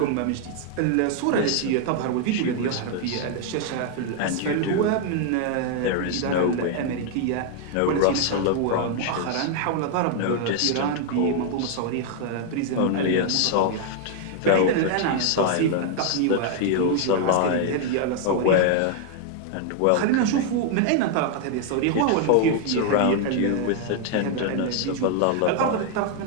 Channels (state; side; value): different; both; correlation 0.00